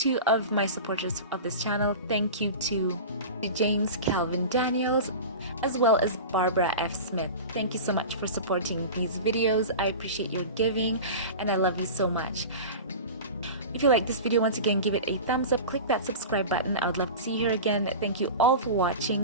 of my supporters of this channel. Thank you to James Calvin Daniels, as well as Barbara F. Smith. Thank you so much for supporting these videos. I appreciate your giving, and I love you so much. If you like this video, once again, give it a thumbs up, click that subscribe button. I would love to see you here again. Thank you all for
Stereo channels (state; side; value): inverted; both; correlation -0.31